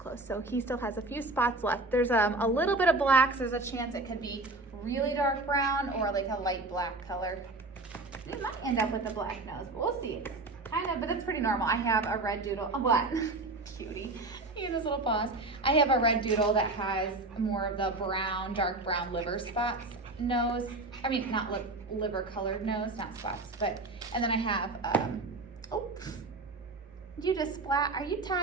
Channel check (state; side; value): quieter; left; 3.0 dB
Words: So he still has a few spots left. There's a little bit of black, so there's a chance it could be really dark brown or like a light black color. It might end up with a black nose, but we'll see. But that's pretty normal. I have a red doodle. Oh, what? Cutie. He had his little paws. I have a red doodle that has more of the brown, dark brown liver spots nose. Not liver colored nose, not spots, but, and then I have, you just splat. Are you